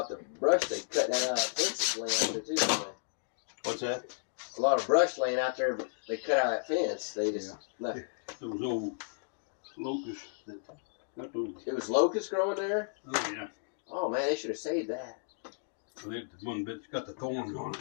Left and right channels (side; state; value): right; silent; digital silence